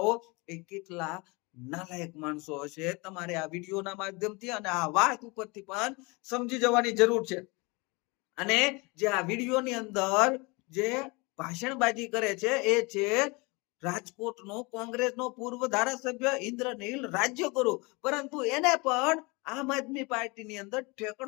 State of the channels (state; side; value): quieter; right; 27.1 dB